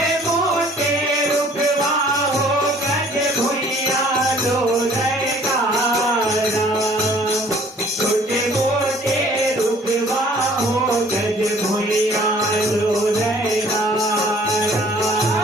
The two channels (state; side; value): normal; both; correlation 0.55